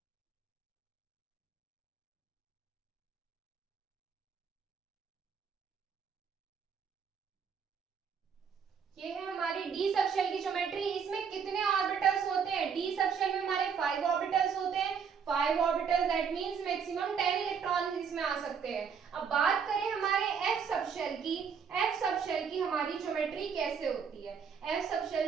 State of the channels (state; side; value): quieter; left; 6.7 dB